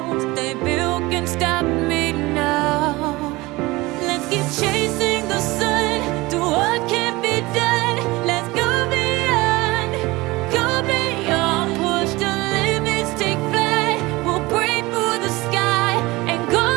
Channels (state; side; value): quieter; left; 21.4 dB